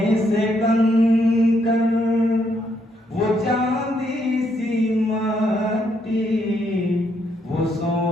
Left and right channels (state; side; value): normal; both; correlation 0.75